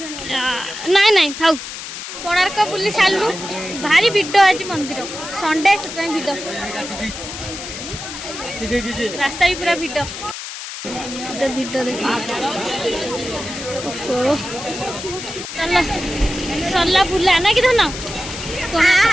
नाई नाई थाउ कोणार्क बुली सालु भारी भिड आज मंदिर संडे से भिड रास्ता भी पूरा भिड भिड देखिए चलो सरला बुला ना कि धन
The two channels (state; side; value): noise; left; hiss, 9 dB below the sound